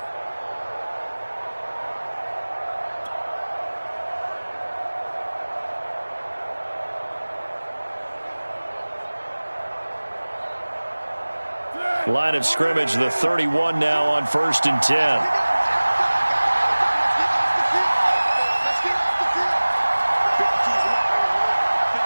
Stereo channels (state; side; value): inverted; both; correlation -1.00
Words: Line of scrimmage, the 31 now on 1st and 10.